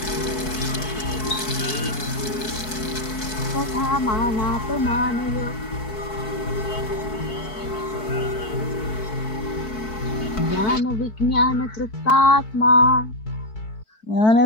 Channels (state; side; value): late; right; 4.6 ms